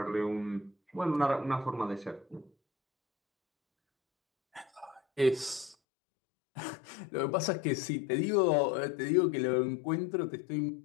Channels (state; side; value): drops out; right; at 5.8 s